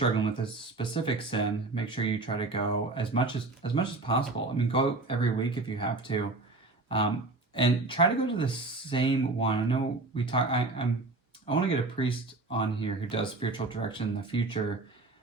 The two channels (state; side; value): quieter; left; 3.3 dB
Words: with this specific sin, make sure you try to go as much as possible. I mean, go every week if you have to, and try to go to the same one. I know we talk. I want to get a priest on here who does spiritual direction in the future